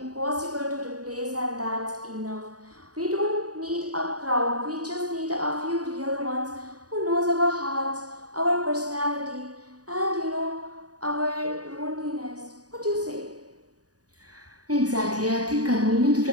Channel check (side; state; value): left; late; 0.68 ms